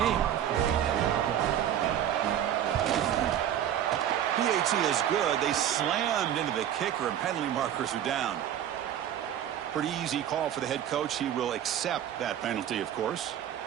PAT is good. They slammed into the kicker, and penalty markers are down. Pretty easy call for the head coach. He will accept that penalty, of course.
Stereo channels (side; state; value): left; quieter; 10.5 dB